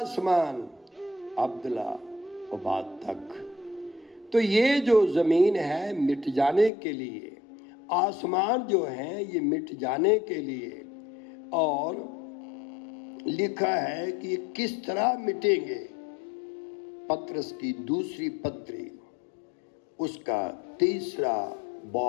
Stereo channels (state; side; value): drops out; right; at 6.7 s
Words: अब्दुल्ला आबाद तक। तो ये जो जमीन है मिट जाने के लिए, आसमान जो है ये मिट जाने के लिए, और लिखा है कि किस तरह मिटेंगे। पत्रस की दूसरी पत्री उसका 3